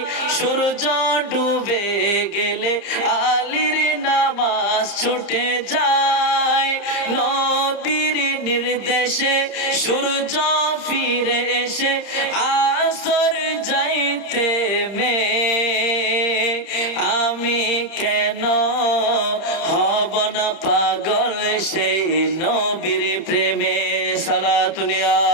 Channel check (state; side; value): late; right; 31 ms